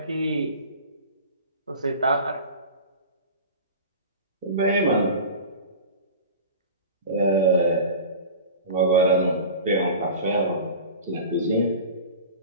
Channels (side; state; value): both; inverted; correlation -0.35